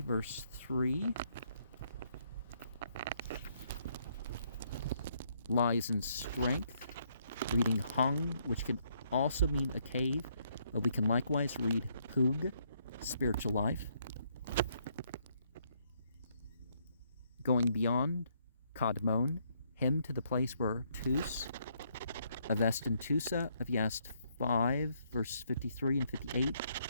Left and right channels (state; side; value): inverted; both; correlation -0.71